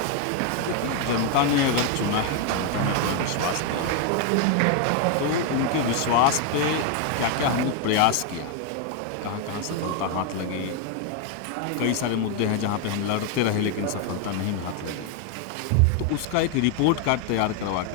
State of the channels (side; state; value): both; different; correlation 0.01